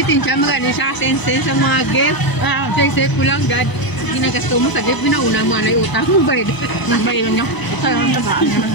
magano siya sense sa mga gift. Safe ko lang, God. Ginagasto mo sa gift, binauna mo na yung utang mo, bayad. Bayan niyo.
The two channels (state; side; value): late; right; 1.0 ms